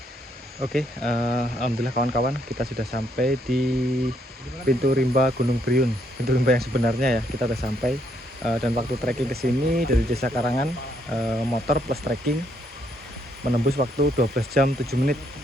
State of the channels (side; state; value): both; normal; correlation 0.72